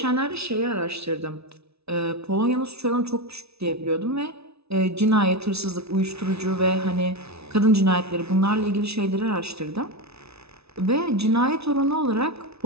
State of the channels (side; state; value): left; late; 0.79 ms